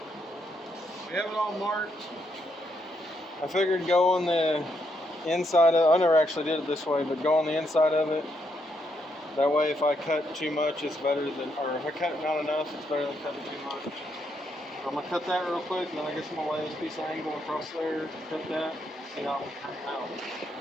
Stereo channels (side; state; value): both; normal; correlation 0.77